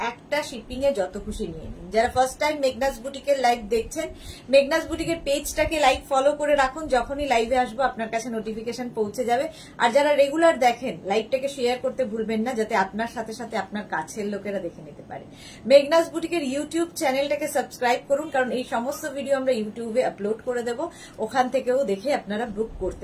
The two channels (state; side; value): identical; both; correlation 1.00